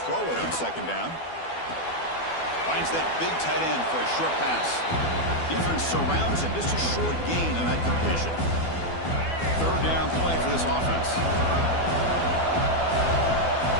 throw it on second down. Finds that big tight end for a short pass. Defense surrounds him. Just a short gain on that completion. Third down play for this offense.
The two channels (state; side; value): late; right; 12 ms